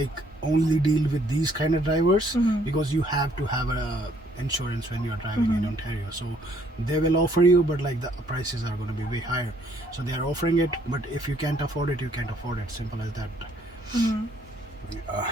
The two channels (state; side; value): normal; both; correlation 0.65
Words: only deal with these kind of drivers, because you have to have a insurance when you're driving in Ontario. So they will offer you, but like the prices are going to be way higher. So they are offering it, but if you can't afford it, you can't afford it. Simple as that.